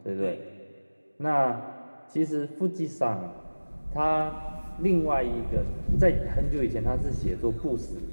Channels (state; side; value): inverted; both; correlation -1.00